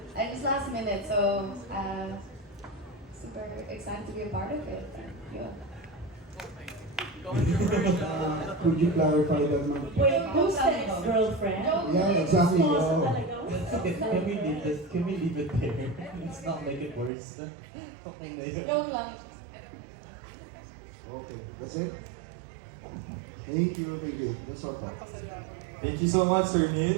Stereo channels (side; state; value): left; drops out; at 17.1 s